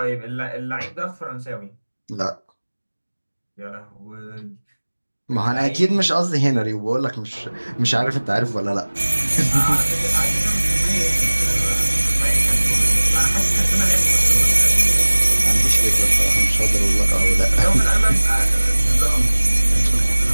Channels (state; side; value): inverted; both; correlation -1.00